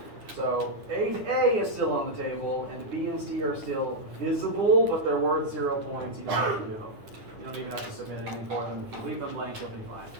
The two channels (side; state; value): left; late; 9.7 ms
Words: So 8A is still on the table, and B and C are still visible, but they're worth 0 points. You don't have to do them. You don't even have to submit anything for them. If you leave them blank, you'll be fine.